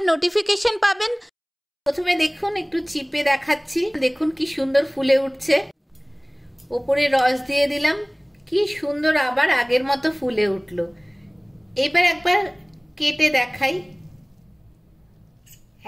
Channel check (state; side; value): identical; both; correlation 1.00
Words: নোটিফিকেশন পাবেন। প্রথমে দেখুন, একটু চিপে দেখাচ্ছি, দেখুন কি সুন্দর ফুলে উঠছে। ওপরে রস দিয়ে দিলাম, কি সুন্দর আবার আগের মতো ফুলে উঠলো। এবার একবার কেটে দেখাই,